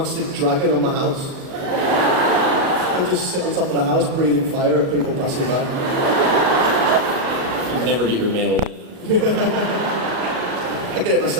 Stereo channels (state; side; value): late; left; 38 ms